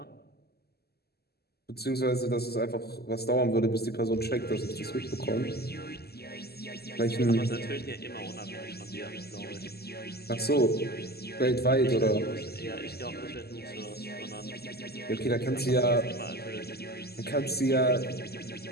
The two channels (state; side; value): late; right; 0.46 ms